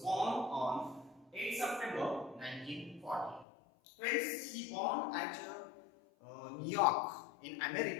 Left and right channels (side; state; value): right; drops out; at 3.5 s